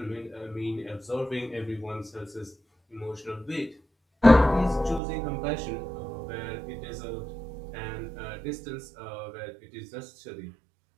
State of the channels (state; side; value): drops out; left; at 5.0 s